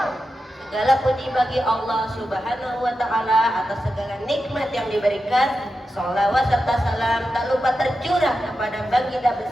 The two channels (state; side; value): normal; both; correlation 0.90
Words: Segala puji bagi Allah Subhanahu wa Ta'ala atas segala nikmat yang diberikan. Sholawat serta salam tak lupa tercurah kepada baginda